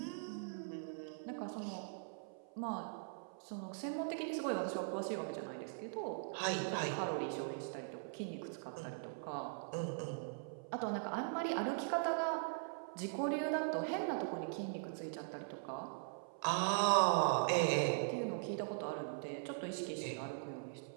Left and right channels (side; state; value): left; silent; 50 dB below the other